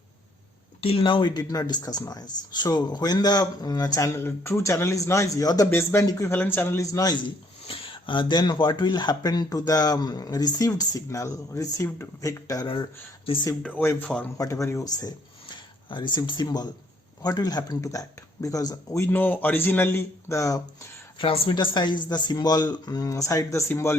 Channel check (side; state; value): both; normal; correlation 0.65